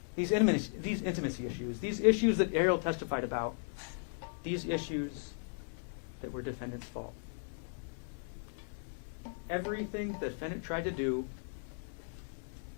These intimacy issues, these issues that Arielle testified about, these issues that were defendant's fault. Everything the defendant tried to do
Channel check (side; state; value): right; silent; 53 dB below the other